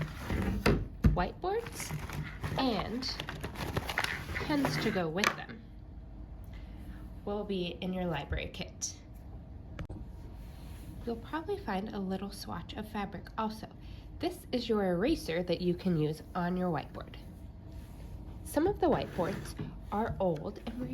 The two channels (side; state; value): both; identical; correlation 1.00